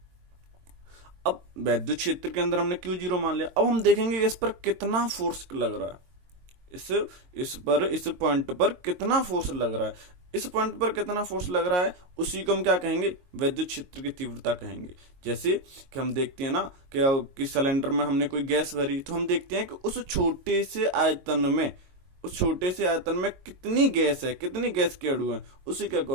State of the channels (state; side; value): late; left; 22 ms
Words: अब वैद्युत क्षेत्र के अंदर हमने Q0 मान लिया। अब हम देखेंगे इस पर कितना फोर्स लग रहा है, इस पॉइंट पर कितना फोर्स लग रहा है। इस पॉइंट पर कितना फोर्स लग रहा है उसी को हम क्या कहेंगे, वैद्युत क्षेत्र की तीव्रता कहेंगे। जैसे कि हम देखते हैं ना कि सिलेंडर में हमने कोई गैस भरी, तो हम देखते हैं कि उस छोटे से आयतन में कितनी गैस है, कितनी गैस के अणु हैं, उसी के